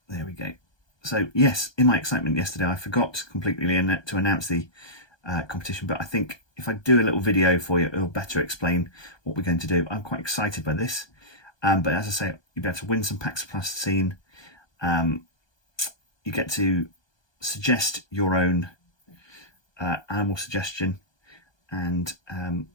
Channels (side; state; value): right; late; 1.2 ms